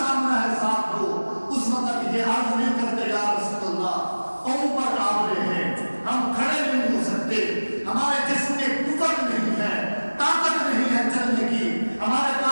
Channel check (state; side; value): inverted; both; correlation -1.00